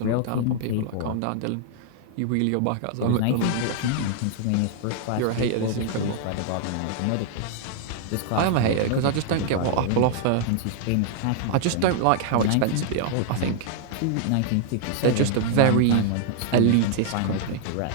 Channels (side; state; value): both; different; correlation 0.00